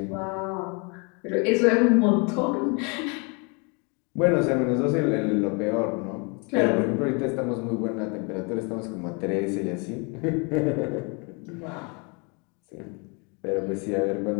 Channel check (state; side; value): quieter; right; 32.8 dB